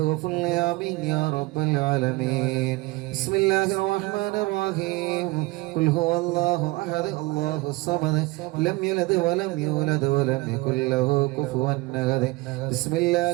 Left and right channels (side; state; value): left; quieter; 22.5 dB